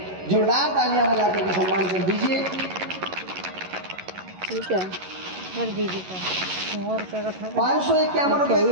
जोरदार तालियां बजा करके सम्मान कर दीजिए। ठीक है कर दीजिए का 551 रुपये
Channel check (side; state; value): left; late; 11 ms